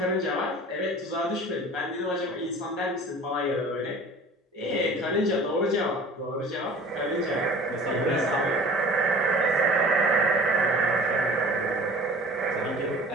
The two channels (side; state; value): both; normal; correlation 0.44